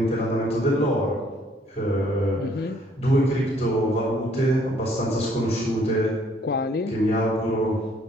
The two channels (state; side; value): normal; both; correlation 0.63